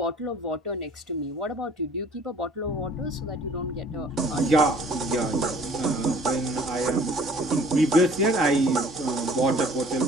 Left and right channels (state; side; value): normal; both; correlation 0.53